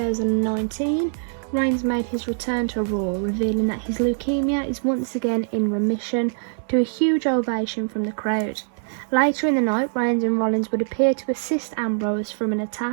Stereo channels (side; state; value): left; silent; digital silence